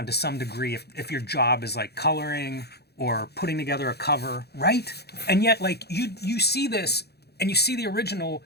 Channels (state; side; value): late; right; 0.47 ms